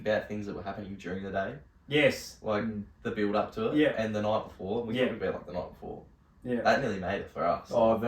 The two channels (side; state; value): both; identical; correlation 1.00